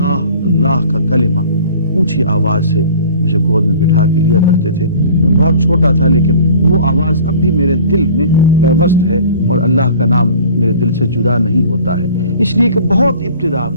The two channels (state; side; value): inverted; both; correlation -0.46